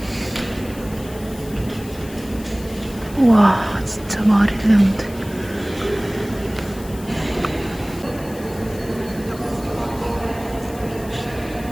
와, 진짜 말이 되는데.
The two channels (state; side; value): noise; left; hiss, 18 dB below the sound